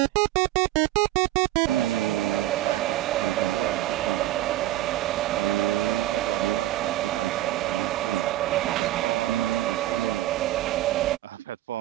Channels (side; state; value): left; quieter; 14.9 dB